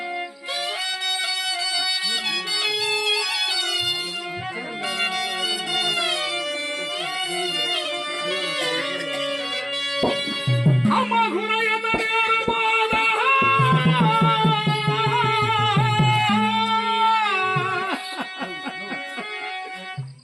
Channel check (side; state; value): both; identical; correlation 1.00